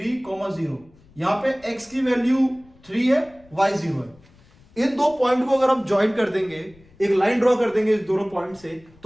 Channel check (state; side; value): noise; left; rumble, 28 dB below the sound